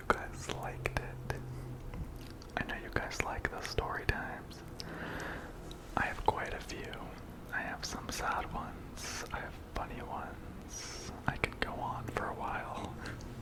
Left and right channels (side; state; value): both; identical; correlation 1.00